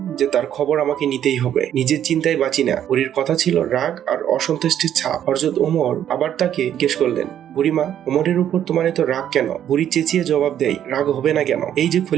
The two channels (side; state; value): left; quieter; 10.3 dB